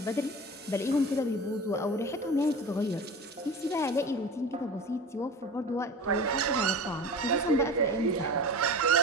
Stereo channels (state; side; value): normal; both; correlation 0.34